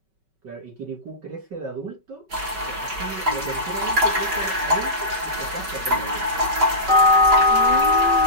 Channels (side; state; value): left; late; 5.3 ms